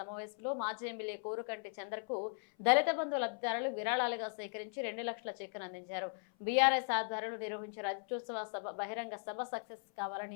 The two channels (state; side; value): silent; right; 52 dB below the other